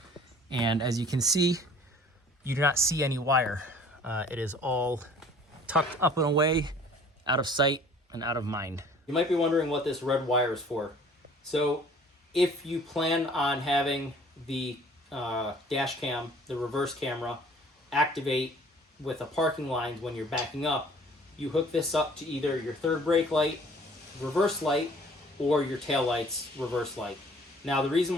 And as you can see, you do not see any wire. It is all tucked up and away, out of sight and out of mind. You might be wondering what this red wire is for. So if you plan on having the dash cam, the reverse camera, activate with a parking line when you're backing up, you hook this up to either your third brake light, reverse light, or your tail lights, reverse light. Now, the reason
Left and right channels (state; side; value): normal; both; correlation 0.52